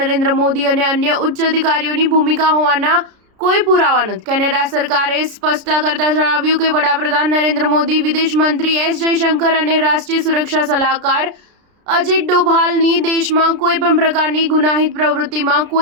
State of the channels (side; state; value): left; late; 33 ms